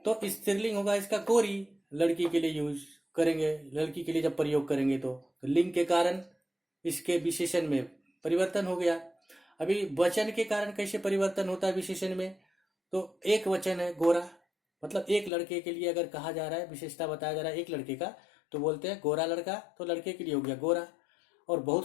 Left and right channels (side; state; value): right; drops out; at 15.3 s